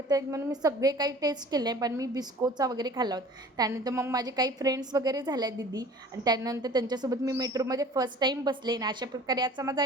आहेत म्हणून मी सगळे काही टेस्ट केले, पण मी बिस्कोचा वगैरे खाल्ला होता. त्यानंतर मग माझे काही फ्रेंड्स वगैरे झाल्या दीदी, आणि त्यानंतर त्यांच्यासोबत मी मेट्रोमध्ये फर्स्ट टाईम बसले. आणि अशा प्रकारे आजचा माझा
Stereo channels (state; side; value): normal; both; correlation 0.46